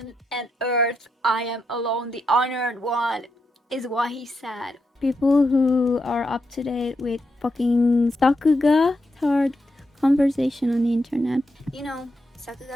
and earth, I am alone the honored one, is what he said. People who are up to date with fucking Sakuga third conversation on the internet. You know,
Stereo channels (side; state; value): both; normal; correlation 0.83